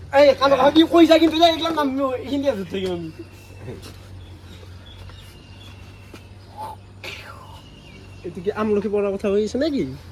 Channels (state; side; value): identical; both; correlation 1.00